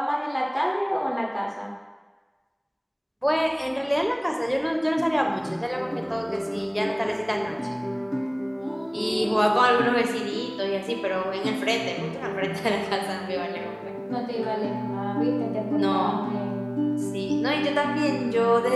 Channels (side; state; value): both; identical; correlation 1.00